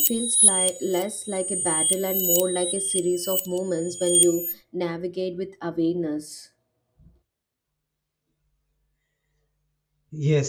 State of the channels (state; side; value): identical; both; correlation 1.00